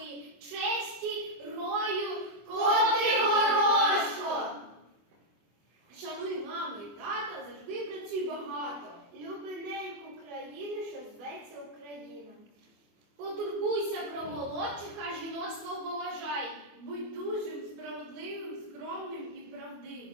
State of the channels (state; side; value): late; left; 24 ms